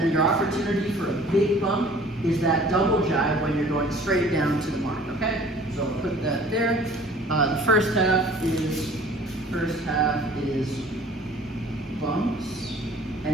your opportunity for a big bump is that double jibe when you're going straight down to the mark. Okay, so I'll put that there. The first half is bumps,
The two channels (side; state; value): both; normal; correlation 0.50